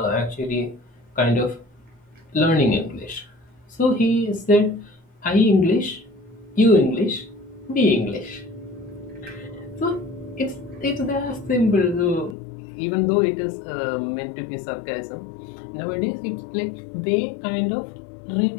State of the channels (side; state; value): right; drops out; at 12.4 s